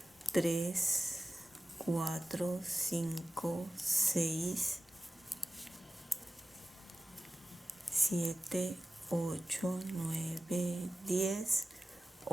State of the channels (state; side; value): normal; both; correlation 0.95